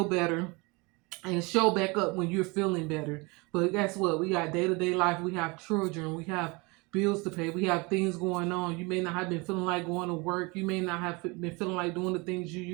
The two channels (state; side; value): quieter; left; 26.9 dB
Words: better and show back up when you're feeling better. But guess what? We got day-to-day life. We have children. We have bills to pay. We have things going on. You may not have been feeling like going to work. You may not have been feeling like doing the things you